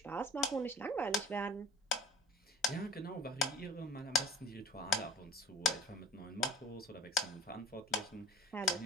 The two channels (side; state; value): both; normal; correlation 0.44